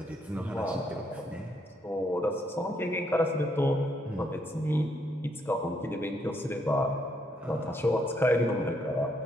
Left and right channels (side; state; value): both; normal; correlation 0.73